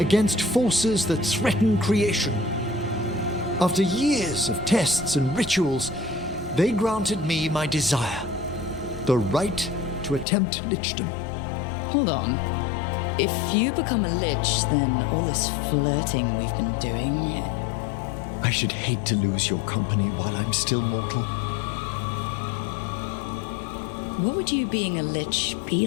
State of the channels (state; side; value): drops out; right; at 10.2 s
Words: forces that threaten creation. After years of tests and rituals, they granted me my desire, the right to attempt lichdom. Hold on. If you become a lich, then all this flirting we've been doing... I should hate to lose your company while I'm still mortal. What would you being a lich be